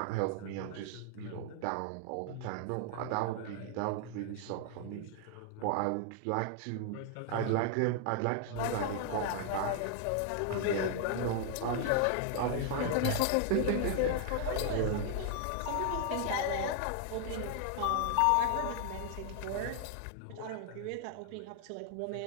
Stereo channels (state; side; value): different; both; correlation 0.00